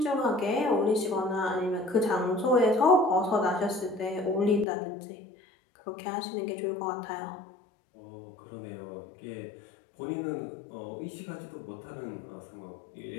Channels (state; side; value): drops out; right; at 4.7 s